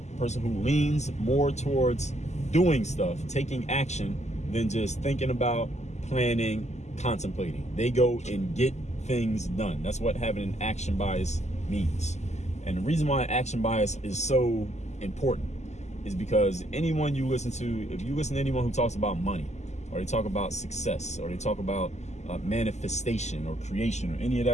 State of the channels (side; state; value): right; late; 0.33 ms